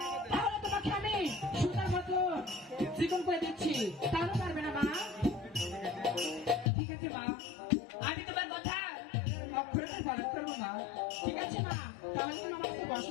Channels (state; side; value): drops out; right; at 6.7 s